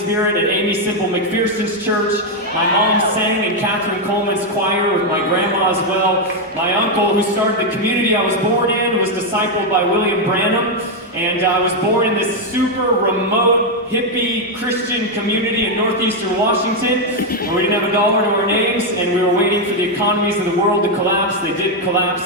at Amy Simple McPherson's church. My mom sang in Catherine Coleman's choir with my grandma as well. My uncle, who started the community I was born in, was discipled by William Branham. And I was born in this super remote, hippie Christian community in northeastern Washington, where we didn't have a dollar to our names, and we were waiting for the economies of the world to collapse. They did collapse.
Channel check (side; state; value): both; normal; correlation 0.02